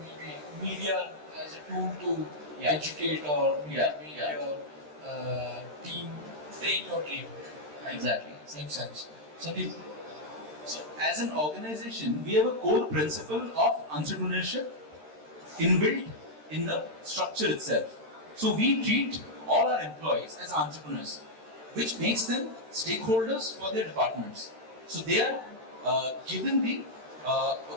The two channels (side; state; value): left; late; 13 ms